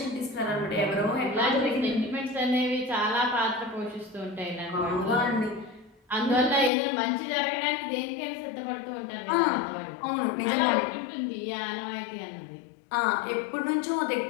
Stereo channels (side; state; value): right; drops out; at 6.7 s